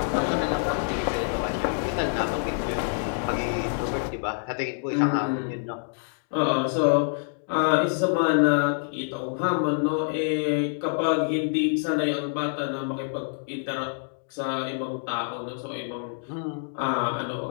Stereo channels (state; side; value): silent; right; digital silence